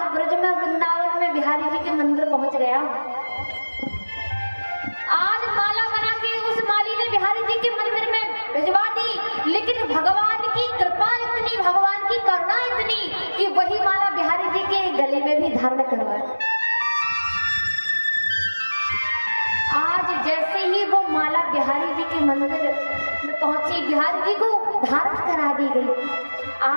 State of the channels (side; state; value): both; inverted; correlation -1.00